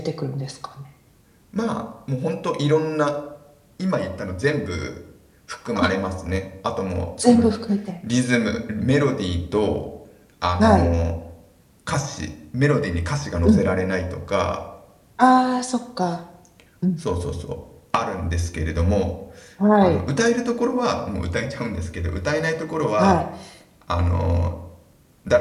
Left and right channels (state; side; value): identical; both; correlation 1.00